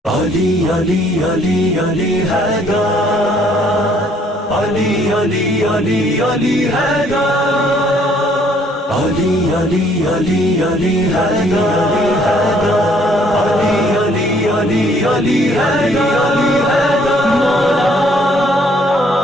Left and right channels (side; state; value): both; normal; correlation 0.63